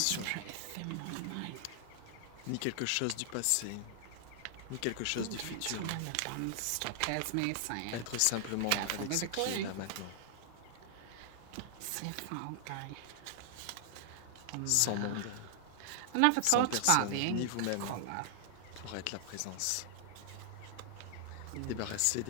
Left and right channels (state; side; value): different; both; correlation 0.00